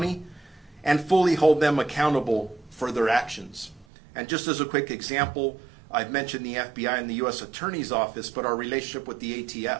and fully hold them accountable for their actions. And just as a quick example, I've mentioned the FBI and the U.S. Attorney's Office, but our relationship with the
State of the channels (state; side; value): drops out; left; at 3.9 s